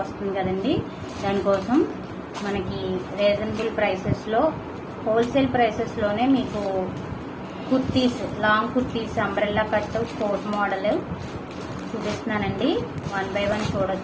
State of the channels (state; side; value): identical; both; correlation 1.00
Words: వస్తుంది కదండి, దానికోసం మనకి రీజనబుల్ ప్రైసెస్లో హోల్సేల్ ప్రైసెస్లోనే మీకు kurtis, long kurtis, umbrella cut, coat model చూపిస్తున్నానండి. 1 by 1